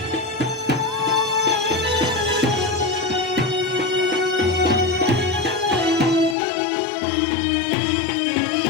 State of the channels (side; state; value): right; drops out; at 6.4 s